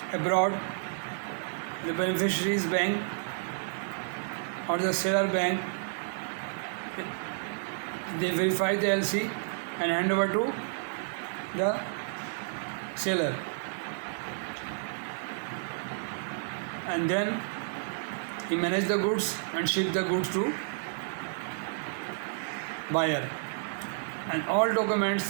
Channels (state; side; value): silent; left; digital silence